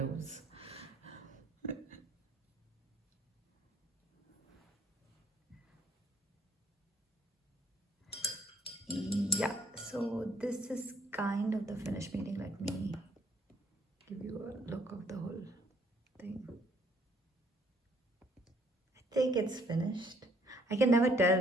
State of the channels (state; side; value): normal; both; correlation 0.64